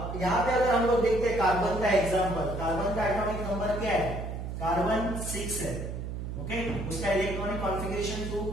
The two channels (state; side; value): noise; right; hum, 6 dB below the sound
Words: यहाँ पे अगर हम लोग देखते हैं कार्बन का एग्जांपल, कार्बन का एटॉमिक नंबर क्या है? कार्बन 6 है। ओके, उसका इलेक्ट्रॉनिक कॉन्फ़िगरेशन